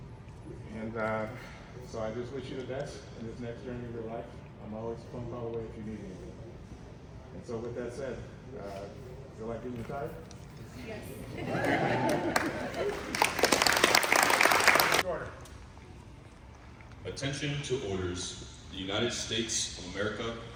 And so I just wish you the best in this next journey of your life. I'm always a phone call away if you need anything. And so with that said, feel like being retired? Yes. Order. Attention to orders. The United States of America,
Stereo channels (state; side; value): identical; both; correlation 1.00